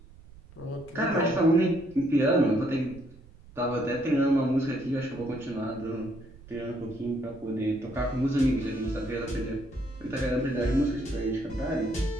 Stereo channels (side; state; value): right; noise; rumble, 21 dB below the sound